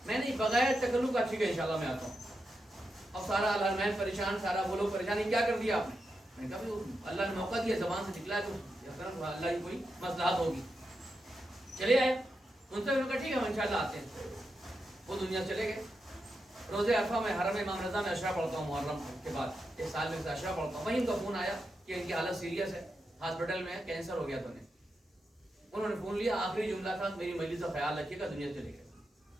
میں نہیں بغیر تکلف کا ٹھیک ہے انشاءاللہ میں آتا ہوں. اب سارا الحرمین پریشان، سارا وہ لوگ پریشان. یہ کیا کر دیا آپ نے؟ میں نے کہا اللہ نے موقع دیا، زبان سے نکلا تو اللہ کی کوئی مصلحت ہوگی. چلے آئے. ان سے انہوں نے کہا ٹھیک ہے ہم انشاءاللہ آتے ہیں. وہ دنیا چلے گئے. روزے عرفہ میں حرم امام رضا میں عشرہ پڑھتا ہوں، محرم کے بعد ایک سال میں سے عشرہ پڑھتا ہوں. وہیں ان کا فون آیا کہ ان کی حالت سیریس ہے، ہاسپٹل میں ہے، کینسر ہو گیا. تو انہوں نے فون لیا. آخری جملہ تھا میری مجلس کا خیال رکھیے گا، دنیا چلے گئے.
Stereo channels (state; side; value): normal; both; correlation 0.87